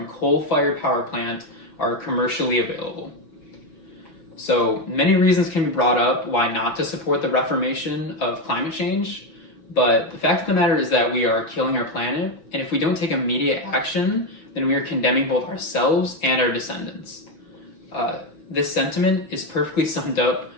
coal-fired power plant are commercially available. So many reasons can be brought up why not to support the reformation of climate change, but the fact of the matter is that we are killing our planet, and if we don't take immediate action, then we are condemning both ourselves and our descendants. This sentiment is perfectly summed up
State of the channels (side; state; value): right; late; 6.0 ms